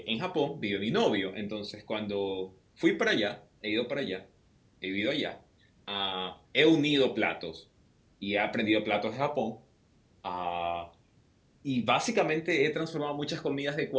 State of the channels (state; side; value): identical; both; correlation 1.00